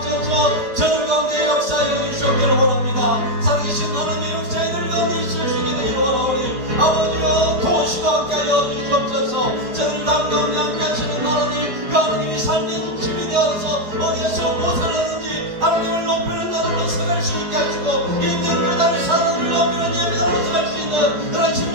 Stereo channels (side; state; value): left; late; 4.8 ms